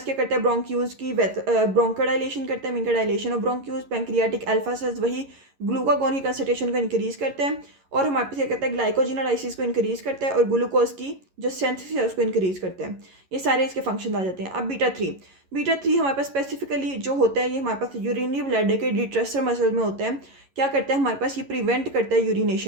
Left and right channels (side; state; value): left; late; 11 ms